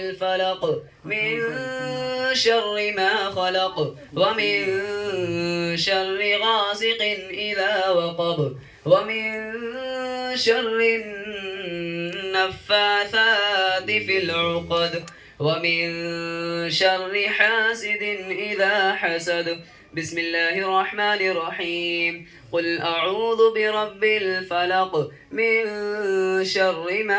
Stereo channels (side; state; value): both; identical; correlation 1.00